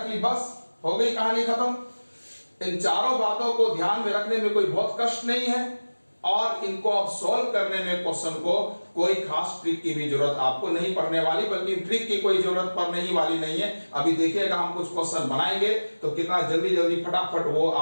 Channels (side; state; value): both; inverted; correlation -1.00